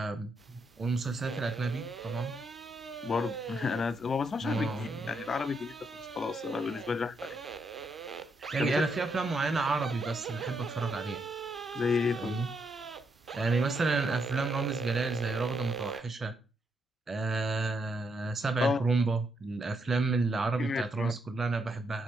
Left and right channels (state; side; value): normal; both; correlation 0.78